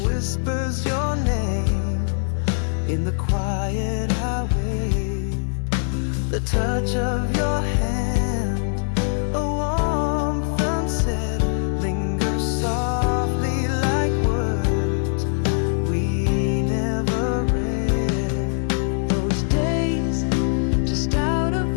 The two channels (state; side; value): silent; right; digital silence